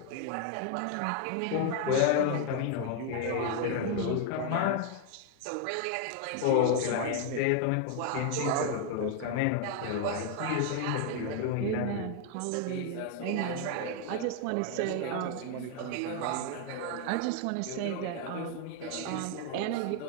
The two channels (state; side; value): different; both; correlation 0.00